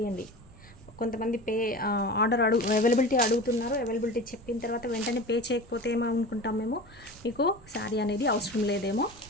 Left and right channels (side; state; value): both; normal; correlation 0.33